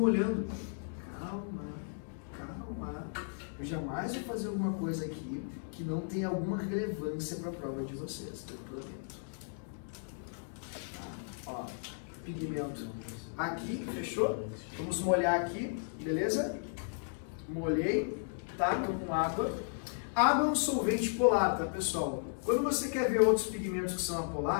Calma, calma. Eu jamais vou fazer alguma coisa aqui que não tenha alguma relevância para a prova de vocês, eu prometo. Ó, pigmento aqui, fechou? Vamos molhar aqui, beleza? Molhei, tá? Tô com água. Água é um solvente polar, tá, pessoal? Quando você quer ver outros pigmentos que são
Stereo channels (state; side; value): silent; right; digital silence